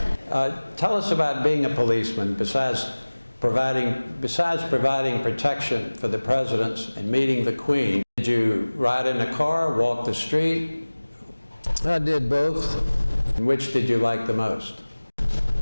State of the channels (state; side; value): inverted; both; correlation -1.00